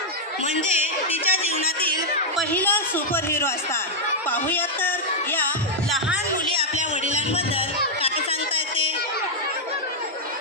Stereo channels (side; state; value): both; normal; correlation -0.05